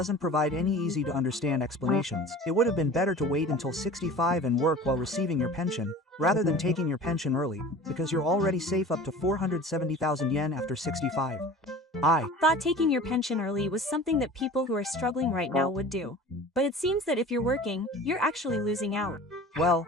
provide any easy-to-understand explanations. It would have been better to wait until 65 and work while receiving your pension, rather than taking your pension early, because you're already safe up to 470,000 yen after 65. I thought taking your pension early was something that people who are struggling right now would do. But it seems that if you're working, you're actually losing out. Well,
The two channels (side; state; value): both; normal; correlation 0.40